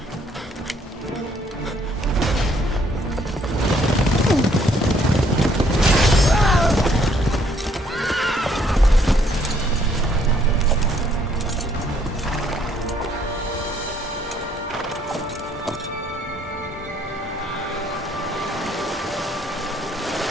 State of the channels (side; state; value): both; normal; correlation 0.66